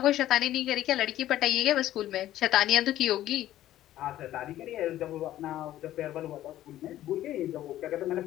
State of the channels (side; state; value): right; quieter; 13.5 dB